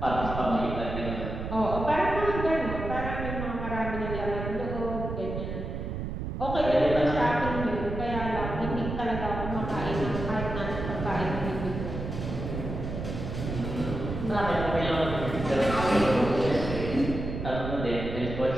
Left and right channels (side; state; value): right; noise; rumble, 5 dB below the sound